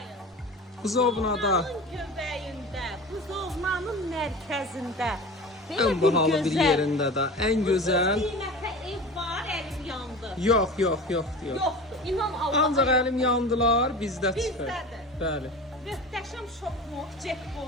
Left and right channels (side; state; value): both; normal; correlation 0.34